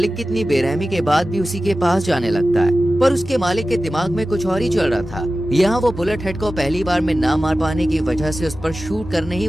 की इतनी बेरहमी के बाद भी उसी के पास जाने लगता है, पर उसके मालिक के दिमाग में कुछ और ही चल रहा था। यहाँ वो बुलेट हेड को पहली बार में ना मार पाने की वजह से उस पर शूट करने ही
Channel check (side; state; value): both; normal; correlation 0.95